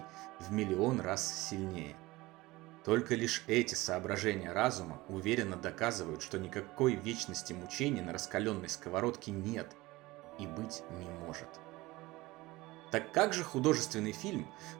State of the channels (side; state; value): left; quieter; 20.3 dB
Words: в миллион раз сильнее. Только лишь эти соображения разума уверенно доказывают, что никакой вечности мучений на раскаленной сковородке нет и быть не может. Так как же художественный фильм,